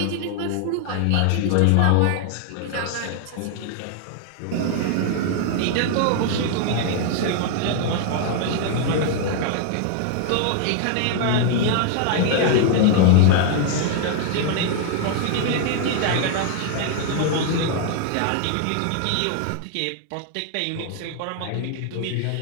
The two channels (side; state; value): both; different; correlation -0.01